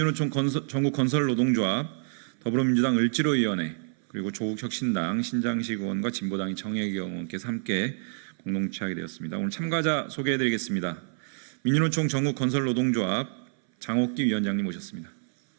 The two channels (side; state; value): left; silent; 60 dB below the other